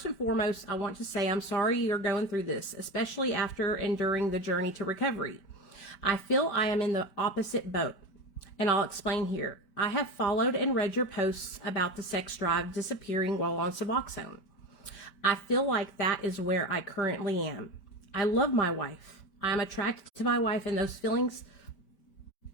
and foremost, I want to say I'm sorry you're going through this, especially after and during the journey to recovery. I feel I am in the opposite boat, and I'll explain here. I have followed and read your posts about the sex drive disappearing while on Suboxone. I feel like that is where I currently am. I love my wife. I am attracted to my wife, and those feelings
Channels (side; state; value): right; late; 5.1 ms